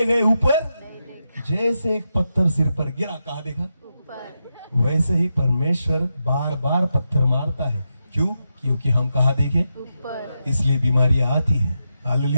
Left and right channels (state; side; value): inverted; both; correlation -0.87